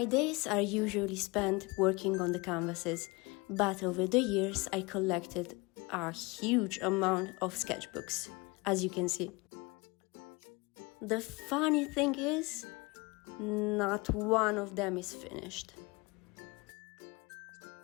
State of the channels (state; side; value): quieter; right; 25.7 dB